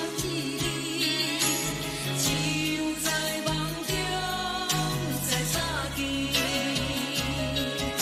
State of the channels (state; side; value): identical; both; correlation 1.00